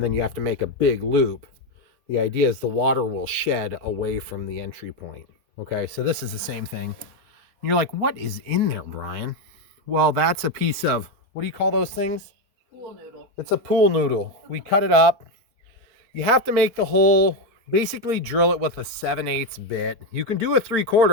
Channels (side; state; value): left; late; 4.5 ms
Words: then you have to make a big loop. The idea is the water will shed away from the entry point. Okay, so this is the same thing. And you're like, what is in there, Brian? Well, that's a piece of, what do you call those things? Pool noodle. It's a pool noodle. We cut it up. You have to make the hole, basically drill it with a 7/8 bit. You can do a